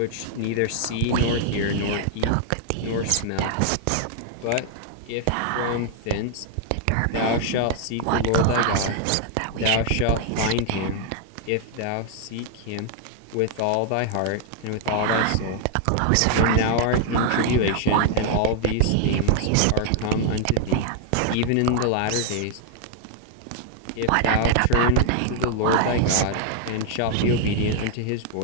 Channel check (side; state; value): both; different; correlation 0.00